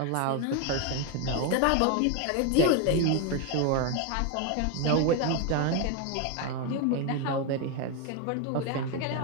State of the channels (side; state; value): both; different; correlation 0.01